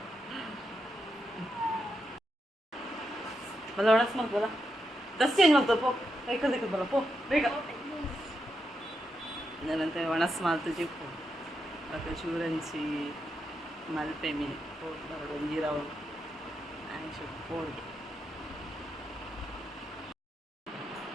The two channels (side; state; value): both; normal; correlation 0.84